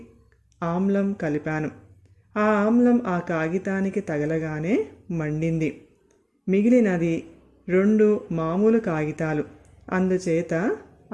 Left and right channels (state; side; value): identical; both; correlation 1.00